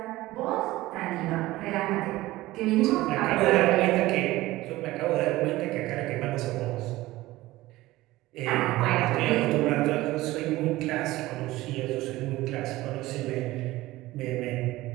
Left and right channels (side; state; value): left; quieter; 17.8 dB